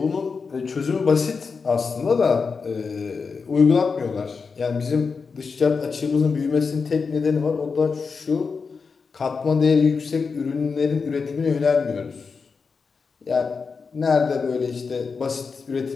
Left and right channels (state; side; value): quieter; right; 5.1 dB